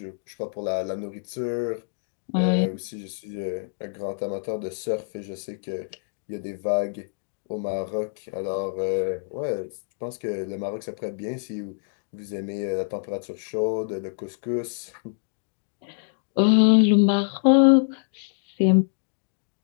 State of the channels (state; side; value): silent; right; digital silence